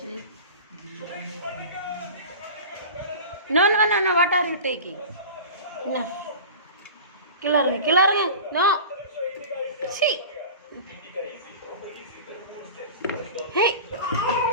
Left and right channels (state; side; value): inverted; both; correlation -0.35